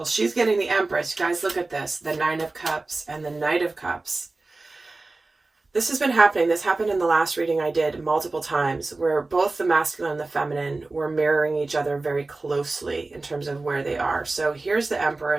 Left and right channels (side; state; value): left; quieter; 3.3 dB